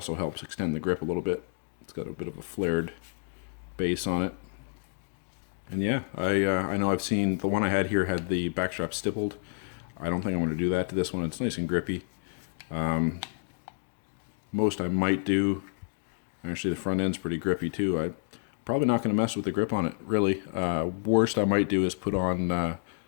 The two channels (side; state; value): right; silent; digital silence